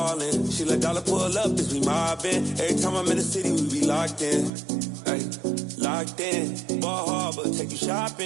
She let dollar pull up as we mobbin'. Every time I'm in the city, we be locked in. Ay, locked in. Ball Harbor, take you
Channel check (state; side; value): drops out; left; at 4.5 s